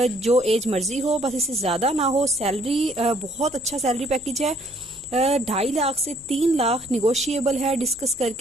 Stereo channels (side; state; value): left; noise; hum, 28 dB below the sound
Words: जो एज मर्जी हो, बस इससे ज्यादा ना हो। सैलरी बहुत अच्छा सैलरी पैकेज है। 2.5 लाख से 3 लाख निगोशिएबल है, डिस्कस